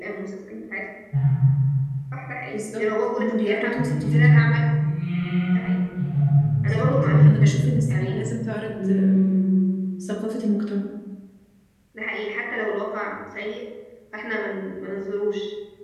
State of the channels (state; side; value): identical; both; correlation 1.00